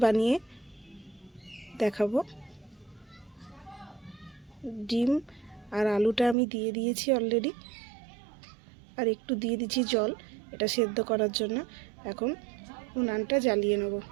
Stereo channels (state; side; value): drops out; left; at 6.4 s